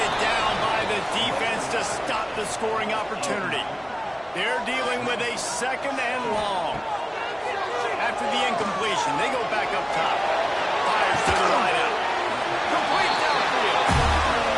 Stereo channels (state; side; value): identical; both; correlation 1.00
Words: down by the defense to stop the scoring opportunity. They're dealing with a second and long. After the incompletion, they go back up top. Fires to the right out. Complete downfield.